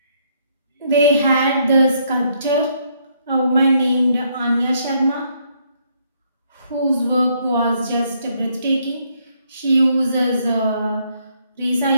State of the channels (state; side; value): inverted; both; correlation -0.71